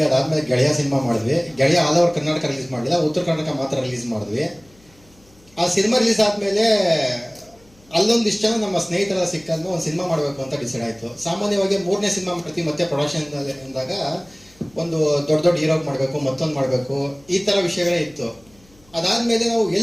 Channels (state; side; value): noise; left; hum, 30 dB below the sound